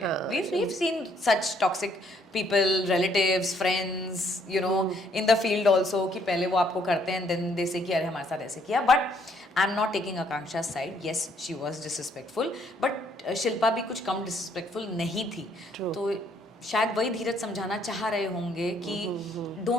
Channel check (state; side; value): normal; both; correlation 0.67